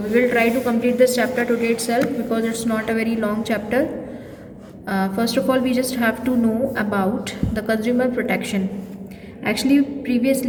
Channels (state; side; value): identical; both; correlation 1.00